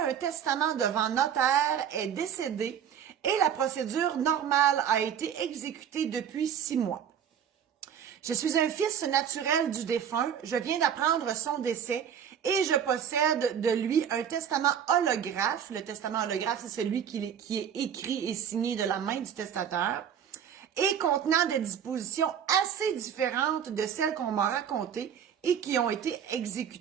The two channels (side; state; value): left; quieter; 8.5 dB